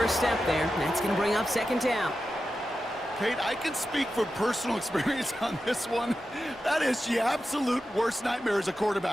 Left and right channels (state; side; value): normal; both; correlation 0.91